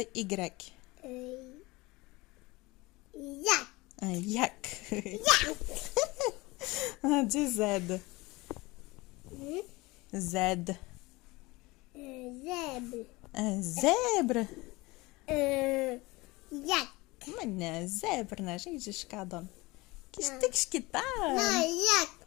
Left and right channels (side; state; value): right; quieter; 22.4 dB